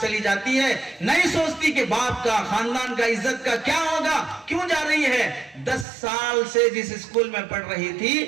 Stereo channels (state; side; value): drops out; left; at 5.9 s